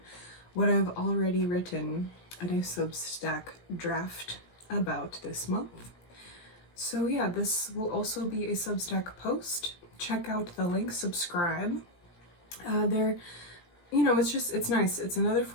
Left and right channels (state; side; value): late; right; 17 ms